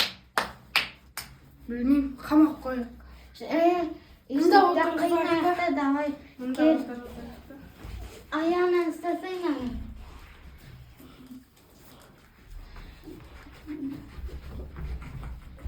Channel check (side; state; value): both; identical; correlation 1.00